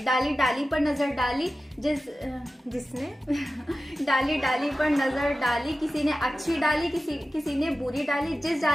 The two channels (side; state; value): both; normal; correlation 0.94